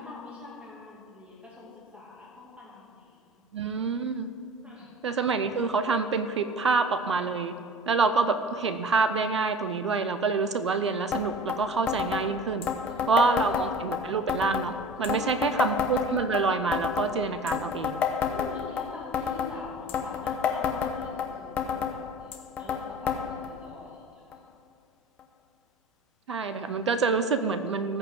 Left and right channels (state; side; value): normal; both; correlation 0.39